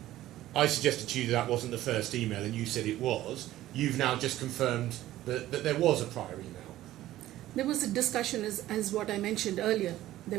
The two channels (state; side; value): quieter; left; 14.6 dB